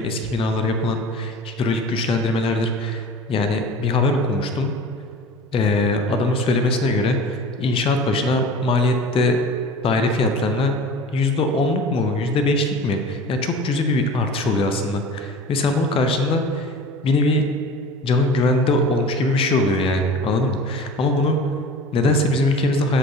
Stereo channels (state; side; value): normal; both; correlation 0.38